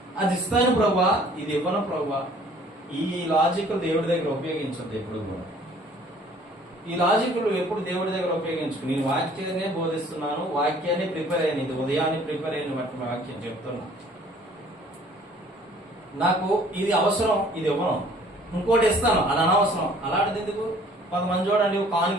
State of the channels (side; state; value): both; normal; correlation 0.55